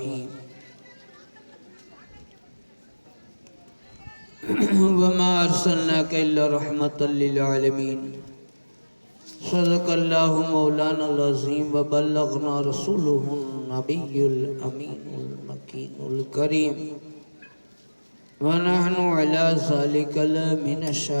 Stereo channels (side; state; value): both; inverted; correlation -1.00